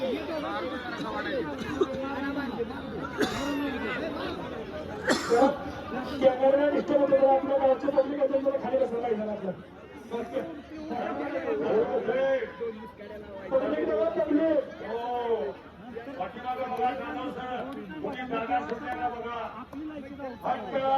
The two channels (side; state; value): both; identical; correlation 1.00